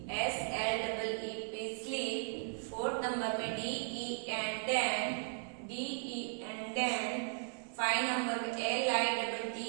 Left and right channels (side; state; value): left; silent; 53 dB below the other